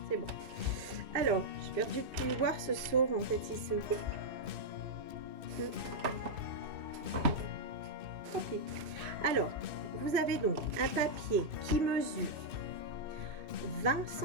C'est bon. Alors, j'ai perdu le pli. Voir se sauve. En fait, il se... Tant pis. Alors, vous avez donc un papier qui mesure 20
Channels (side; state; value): left; late; 2.6 ms